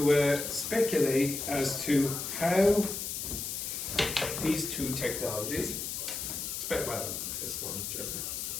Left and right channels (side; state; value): left; noise; hiss, 4 dB below the sound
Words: speculate as to how these two technologies, well, this one, Germany.